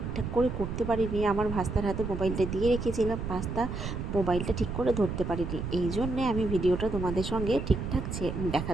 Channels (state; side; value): noise; right; rumble, 5 dB below the sound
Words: করে করতে পারিনি, আমার ভাস্তার হাতে মোবাইলটা দিয়ে রেখেছিলাম, ভাস্তা মোবাইলটা ঠিক করে ধরতে পারিনি, এই জন্যে আমি ভিডিওটা তোমাদের সঙ্গে ঠিকঠাক